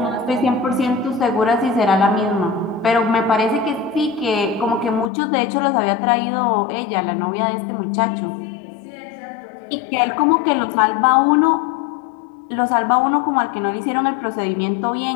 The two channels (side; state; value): right; drops out; at 5.1 s